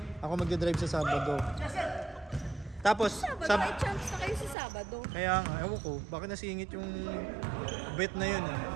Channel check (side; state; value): left; drops out; at 4.5 s